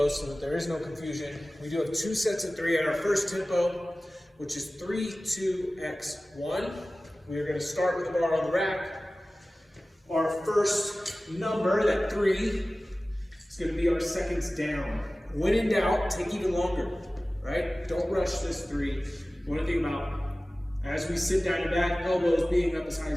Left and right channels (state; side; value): normal; both; correlation 0.97